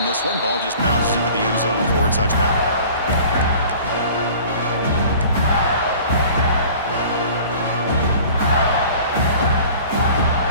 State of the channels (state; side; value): inverted; both; correlation -0.46